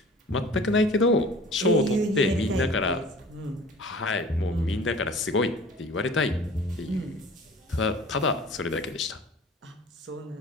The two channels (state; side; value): normal; both; correlation 0.45